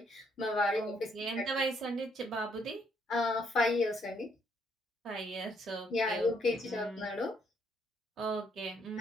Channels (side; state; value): both; normal; correlation 0.71